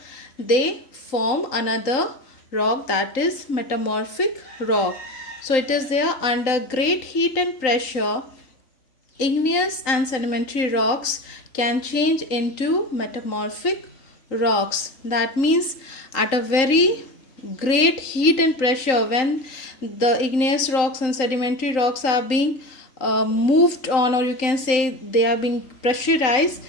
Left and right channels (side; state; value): right; late; 3.8 ms